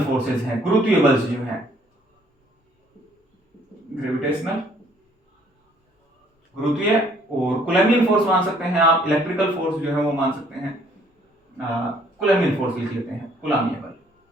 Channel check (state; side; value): normal; both; correlation 0.62